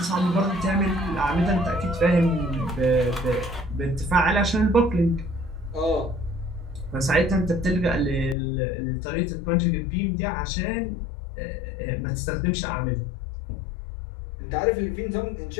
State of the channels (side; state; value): right; drops out; at 8.3 s